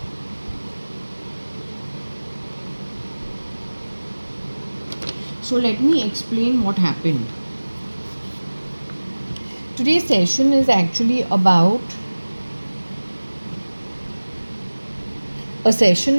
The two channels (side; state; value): both; inverted; correlation -1.00